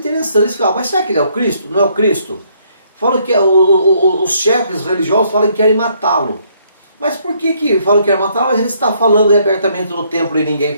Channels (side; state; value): both; inverted; correlation -0.68